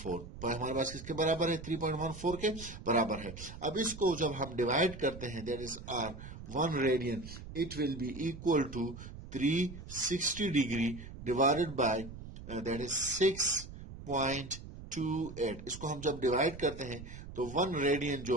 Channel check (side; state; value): right; noise; rumble, 13 dB below the sound